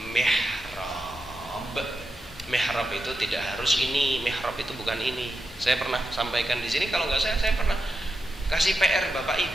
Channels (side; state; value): both; normal; correlation 0.89